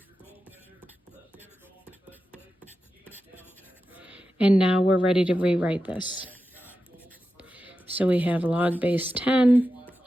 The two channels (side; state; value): both; normal; correlation 0.91